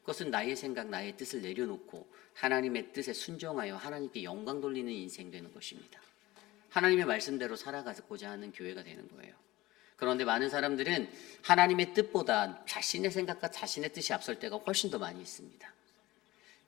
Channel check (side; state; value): right; quieter; 18.4 dB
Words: 그것은 나의 생각, 나의 뜻을 내려놓고 하나님의 뜻에 순종하여 하나님께 영광 돌리는 인생 되는 것입니다. 하나님의 말씀대로 살아가고자 하는 교회가 되는 거예요. 그런데 많은 사람들은 하나님의 뜻보다 자신의 생각과 자신의 뜻이 앞설 때가 훨씬 더 많이 있습니다.